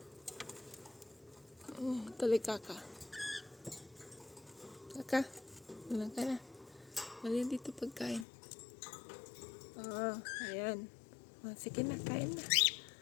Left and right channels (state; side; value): drops out; right; at 8.2 s